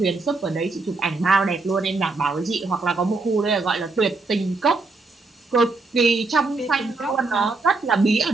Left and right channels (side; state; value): left; quieter; 3.6 dB